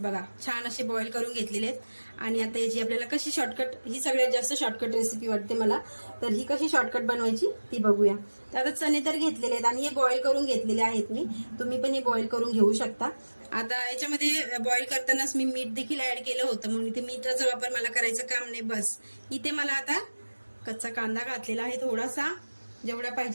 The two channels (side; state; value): both; inverted; correlation -1.00